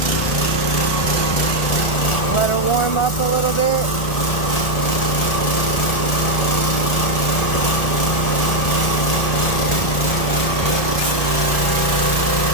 Let her warm up a little bit.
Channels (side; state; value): right; late; 1.4 ms